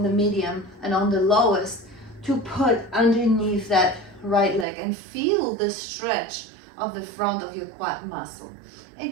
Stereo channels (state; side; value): drops out; left; at 4.7 s